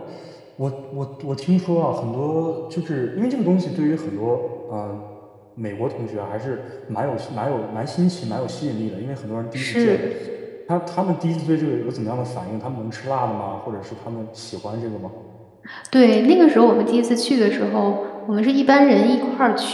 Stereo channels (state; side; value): identical; both; correlation 1.00